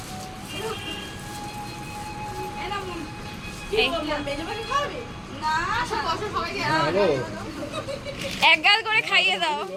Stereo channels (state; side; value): identical; both; correlation 1.00